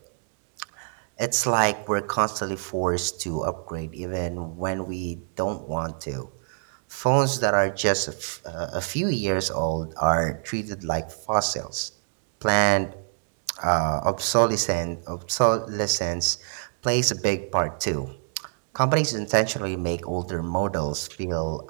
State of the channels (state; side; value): silent; left; digital silence